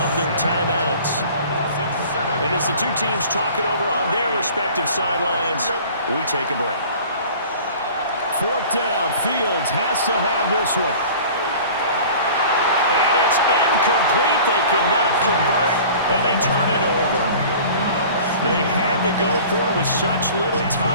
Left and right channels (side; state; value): both; inverted; correlation -0.44